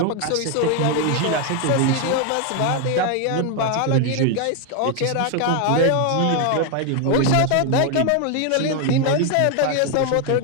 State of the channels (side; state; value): both; different; correlation 0.01